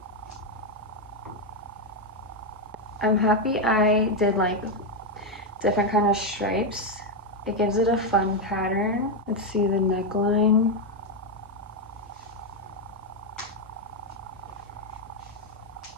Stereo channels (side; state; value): both; normal; correlation 0.05